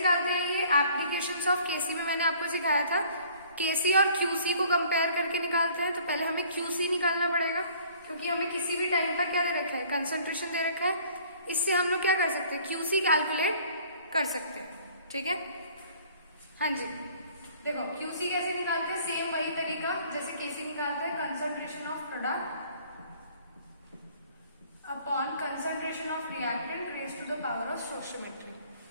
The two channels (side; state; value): both; inverted; correlation -0.54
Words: हैं ये, एप्लीकेशंस ऑफ केसी में मैंने आपको सिखाया था, केसी और क्यूसी को कंपेयर करके निकालते हैं। तो पहले हमें क्यूसी निकालना पड़ेगा क्योंकि हमें किसी भी टाइम पर क्या दे रखा है, कंसंट्रेशन दे रखा है। इससे हम लोग क्या कर सकते हैं, क्यूसी कैलकुलेट कर सकते हैं। ठीक है, हाँ जी, देखो क्यूसी कैसे निकालते हैं, सेम वही तरीका जैसे केसी निकालते हैं, concentration of product upon concentration of reactant raise to the power of stoichiometry.